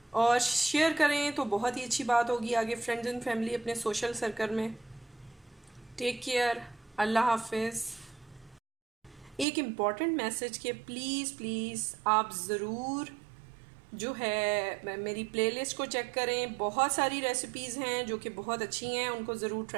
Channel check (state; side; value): drops out; left; at 9.5 s